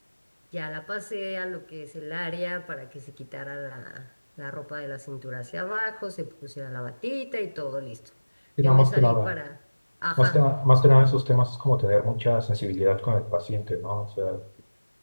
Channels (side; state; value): both; inverted; correlation -1.00